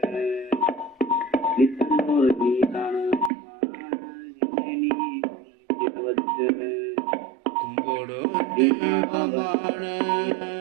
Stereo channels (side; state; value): left; drops out; at 3.3 s